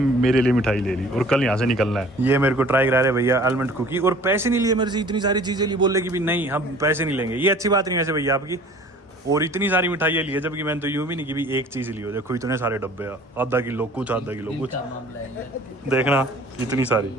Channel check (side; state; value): both; normal; correlation 0.49